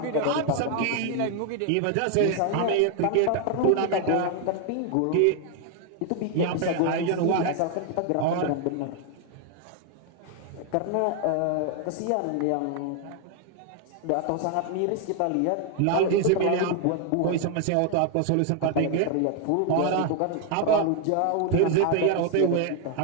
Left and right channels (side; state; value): both; different; correlation 0.01